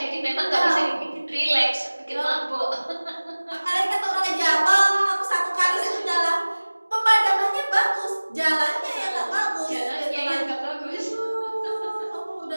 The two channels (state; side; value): inverted; both; correlation -1.00